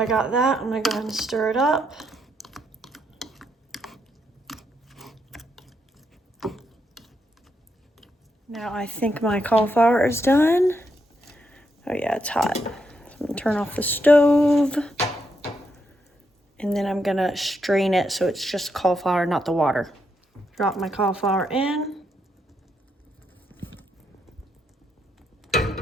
got that, I'm gonna go ahead and stir it up. Now I think my cauliflower is done. Oh yeah, it's hot. So I'm gonna turn off the stove. And then I'm gonna strain it so it's just cauliflower, not the water. Drop my cauliflower in.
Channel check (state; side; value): normal; both; correlation 0.79